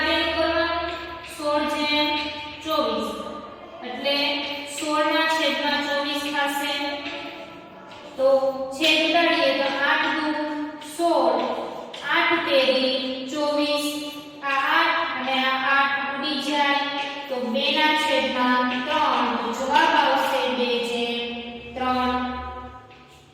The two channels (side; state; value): both; identical; correlation 1.00